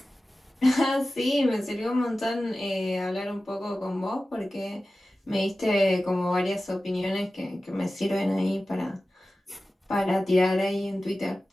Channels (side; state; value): both; normal; correlation 0.95